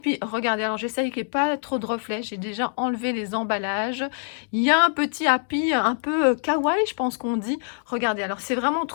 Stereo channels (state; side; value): silent; right; 62 dB below the other